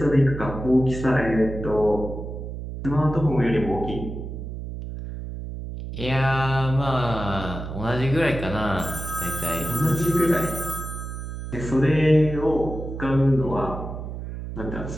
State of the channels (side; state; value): right; noise; hum, 8 dB below the sound